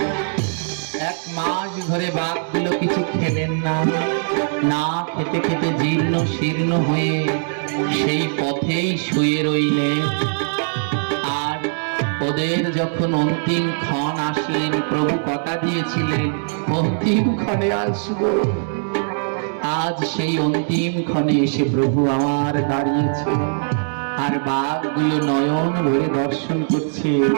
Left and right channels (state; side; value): silent; left; digital silence